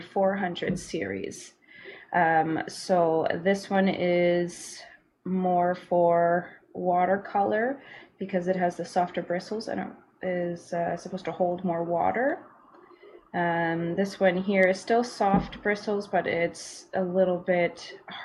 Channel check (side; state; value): both; identical; correlation 1.00